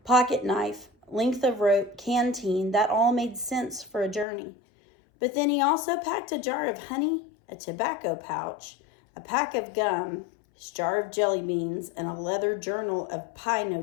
pocket knife, length of rope, canteen, that all made sense for a journey. But then he also packed a jar of honey, a tobacco pouch, a pack of gum, his jar of jelly beans, and a leather journal of pie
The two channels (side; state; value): right; drops out; at 4.2 s